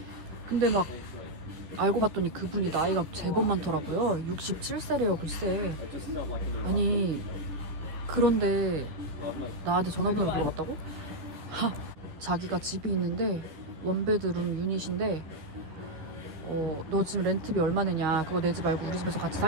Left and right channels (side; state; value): left; late; 13 ms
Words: 근데 막 알고 봤더니 그분이 나이가 제법 많더라고요. 67세래요 글쎄. 아니 그런데 나한테 전화번호를 물어봤다고? 자기가 집이 있는데 원베드룸 유닛인데 너 지금 렌트비 얼마 내냐, 그거 내지 말고 우리 집에서 같이